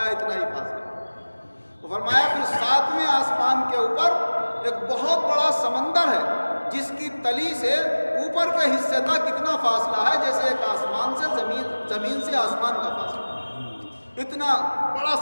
اتنا ہی فاصلہ۔ فرمایا پھر ساتویں آسمان کے اوپر ایک بہت بڑا سمندر ہے جس کی تلی سے اوپر کے حصے تک اتنا فاصلہ ہے جیسے ایک آسمان سے زمین سے آسمان کا فاصلہ، اتنا بڑا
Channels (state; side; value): inverted; both; correlation -1.00